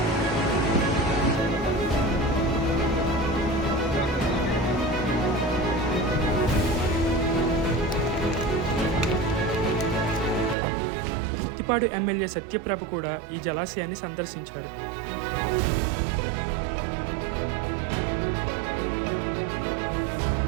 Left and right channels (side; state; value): left; drops out; at 10.6 s